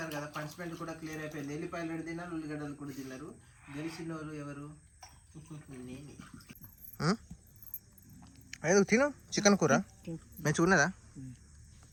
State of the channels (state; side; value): identical; both; correlation 1.00